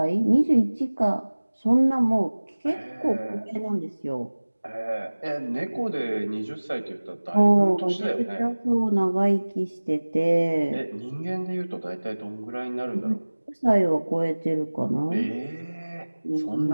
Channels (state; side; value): inverted; both; correlation -1.00